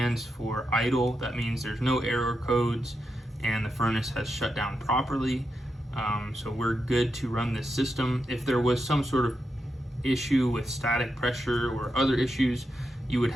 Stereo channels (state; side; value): normal; both; correlation 0.86